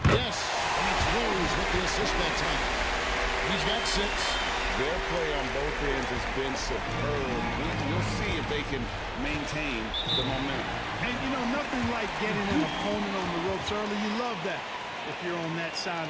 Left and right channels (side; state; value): both; identical; correlation 1.00